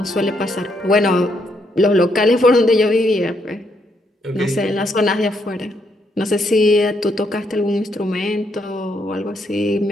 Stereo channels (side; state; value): both; normal; correlation 0.75